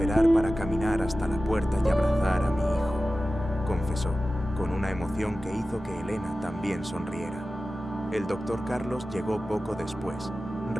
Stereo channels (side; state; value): both; normal; correlation 0.95